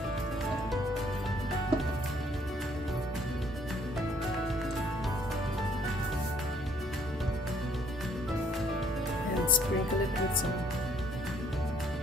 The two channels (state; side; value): normal; both; correlation 0.64